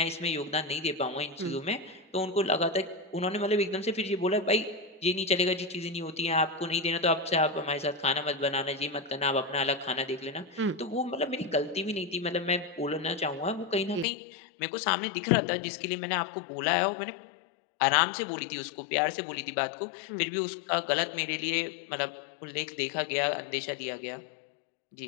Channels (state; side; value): drops out; right; at 14.1 s